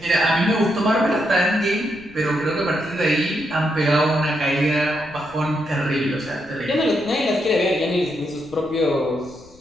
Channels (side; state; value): left; noise; rumble, 24 dB below the sound